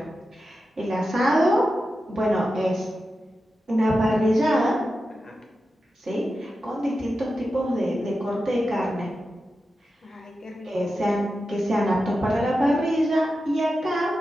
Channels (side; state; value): both; normal; correlation 0.91